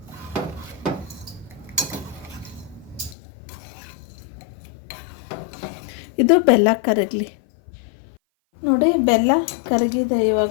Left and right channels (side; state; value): right; drops out; at 3.2 s